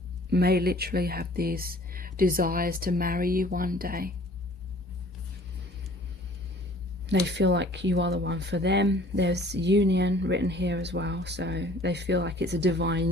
may literally have these desires to marry you one day. They feel like you are the one for them. There's union written here as well, so they feel like it's a divine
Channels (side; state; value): both; normal; correlation 0.52